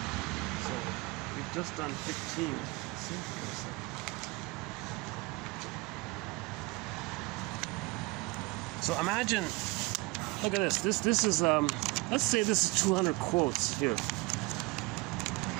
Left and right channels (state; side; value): quieter; left; 24.7 dB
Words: so we've just done 15. Let's see, wait a second. So imagine, look at this. This is let's say this is 200 quotes here.